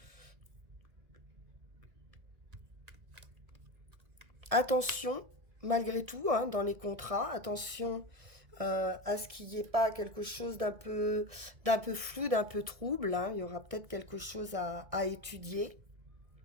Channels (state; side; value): late; left; 1.7 ms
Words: Attention, malgré tout, hein, dans les contrats, attention à ce qu'il n'y ait pas quelque chose d'un peu flou, d'un peu trouble, hein. Il y aura peut-être quelque chose à étudier.